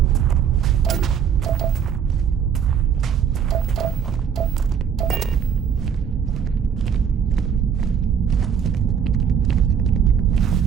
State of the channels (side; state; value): left; quieter; 7.7 dB